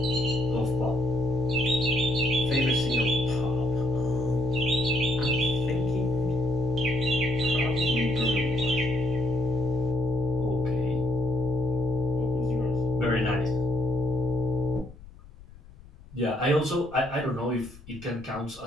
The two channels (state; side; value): noise; left; rumble, 21 dB below the sound